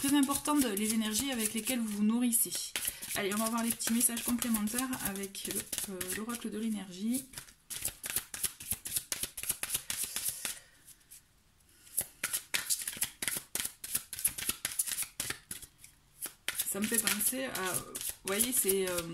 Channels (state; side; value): identical; both; correlation 1.00